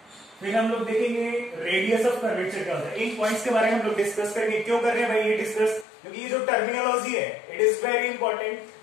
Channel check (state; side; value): drops out; right; at 5.9 s